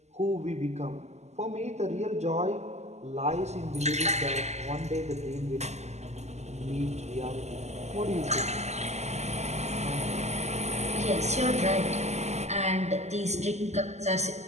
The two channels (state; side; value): late; left; 0.33 ms